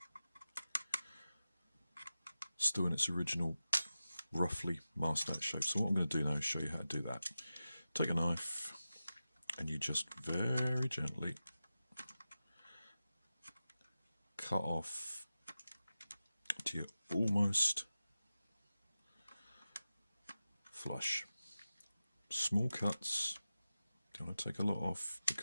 still in its original roughly masked out shape. So what I'm going to do now is show you how to do that. Take a knife and you just very gently cut off to your almost flush. Small cuts, don't want to take a lot off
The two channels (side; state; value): both; inverted; correlation -0.93